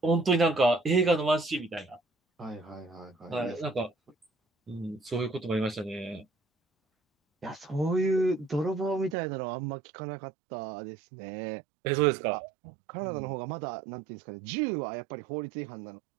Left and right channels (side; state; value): left; drops out; at 9.2 s